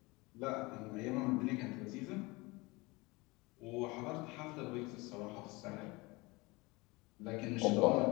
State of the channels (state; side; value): quieter; right; 24.1 dB